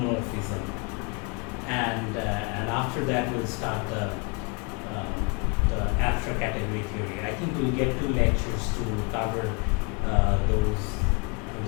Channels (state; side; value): quieter; right; 32.6 dB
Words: and after that we'll start the abstract category theory. I think we'll get 2 lectures to cover